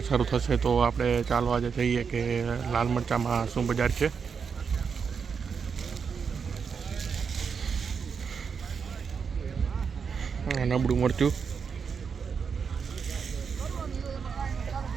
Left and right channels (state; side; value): quieter; left; 6.1 dB